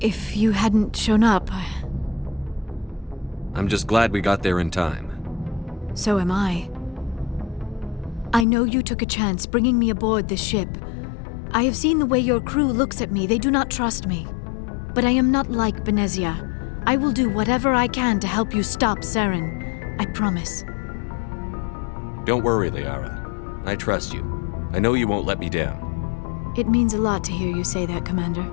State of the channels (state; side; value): drops out; right; at 8.5 s